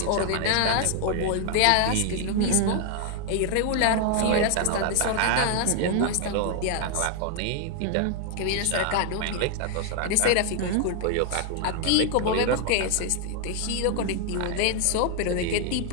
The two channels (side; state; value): both; different; correlation 0.00